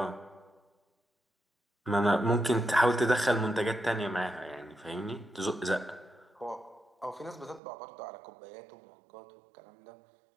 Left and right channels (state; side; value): drops out; left; at 7.6 s